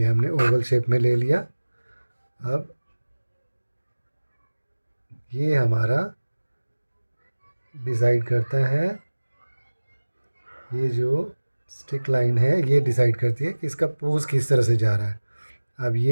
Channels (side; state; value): both; inverted; correlation -1.00